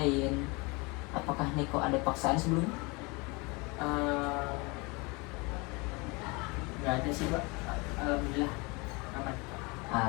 Apakah Niko ada paksaan sebelumnya? Nggak ada sih Pak. Alhamdulillah aman.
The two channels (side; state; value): right; quieter; 27.3 dB